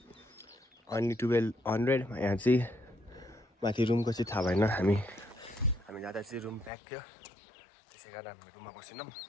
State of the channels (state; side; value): drops out; right; at 6.7 s